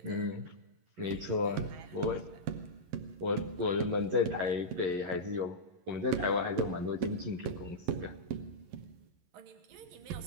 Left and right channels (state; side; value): late; left; 11 ms